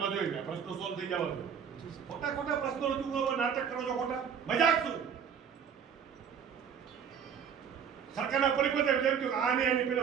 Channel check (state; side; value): quieter; left; 7.3 dB